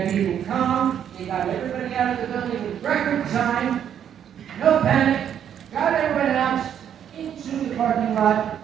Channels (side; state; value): left; quieter; 9.2 dB